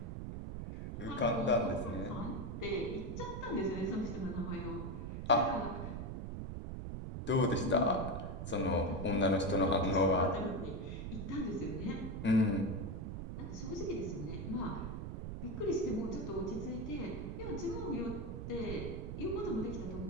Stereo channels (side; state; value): right; noise; rumble, 6 dB below the sound